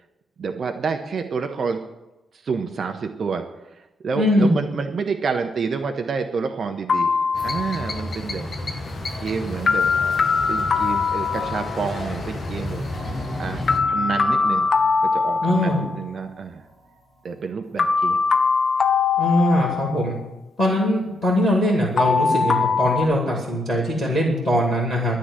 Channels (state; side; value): normal; both; correlation 0.79